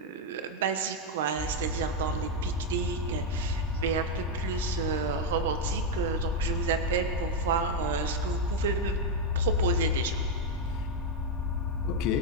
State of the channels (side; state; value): both; normal; correlation 0.02